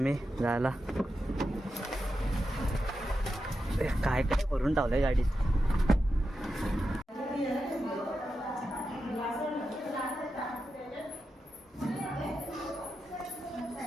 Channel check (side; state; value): both; normal; correlation 0.89